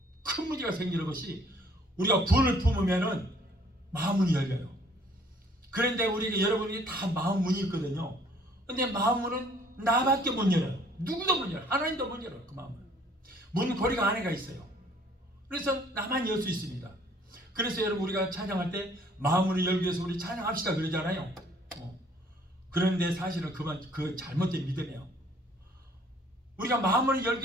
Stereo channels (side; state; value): both; normal; correlation 0.59